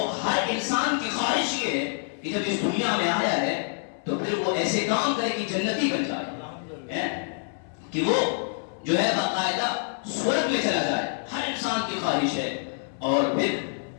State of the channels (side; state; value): right; silent; 60 dB below the other